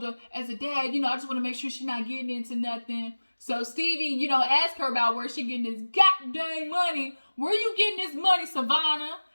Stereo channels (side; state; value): both; inverted; correlation -1.00